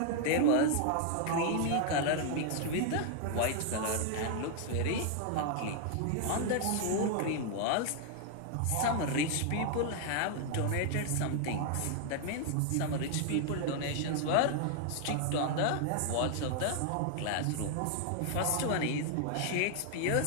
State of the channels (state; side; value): different; both; correlation 0.00